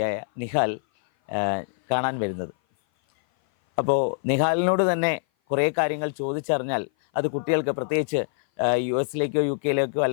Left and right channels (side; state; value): right; silent; 57 dB below the other